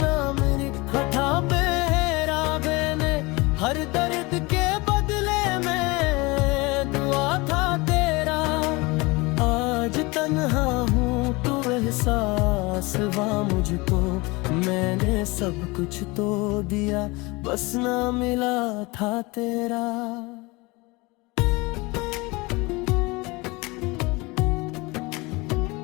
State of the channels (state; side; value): quieter; right; 24.5 dB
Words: लिखा था मेरा मैंने, हर दर्द के बदले में दुआ था तेरा। आज तन्हा हूँ तो एहसास हुआ मुझको, मैंने सब कुछ तो दिया बस ना मिला था तेरा।